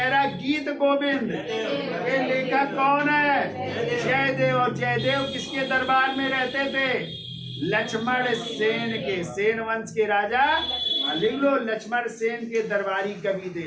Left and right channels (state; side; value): identical; both; correlation 1.00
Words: रहा गीत गोविंद के लेखक कौन है? जयदेव। और जयदेव किसके दरबार में रहते थे? लक्ष्मण सेन के, सेन वंश के राजा, लिख लो, लक्ष्मण सेन के दरबारी कवि